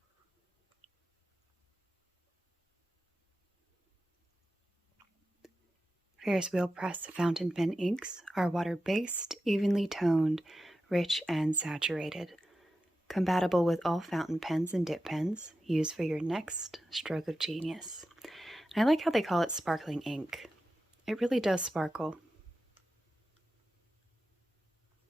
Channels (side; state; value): both; normal; correlation 0.91